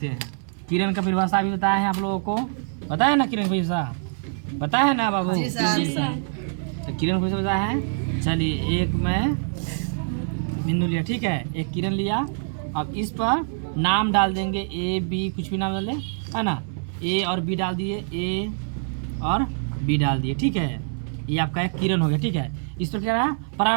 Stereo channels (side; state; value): left; silent; 62 dB below the other